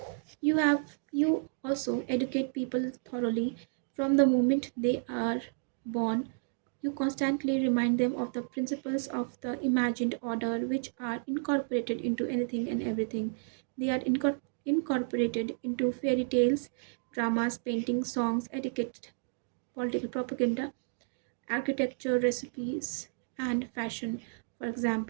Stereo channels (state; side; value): silent; left; digital silence